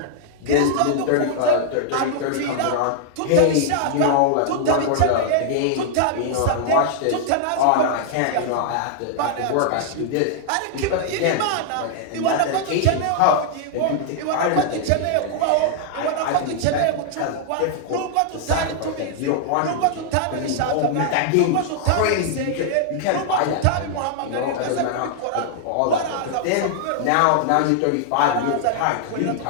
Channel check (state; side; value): different; both; correlation -0.01